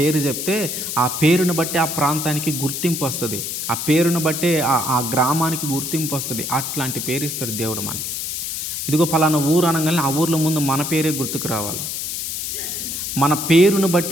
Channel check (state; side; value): noise; left; hiss, 4 dB below the sound